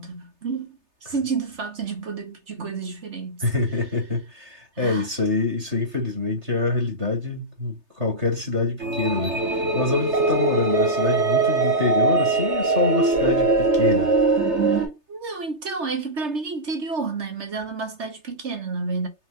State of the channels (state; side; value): late; left; 3.3 ms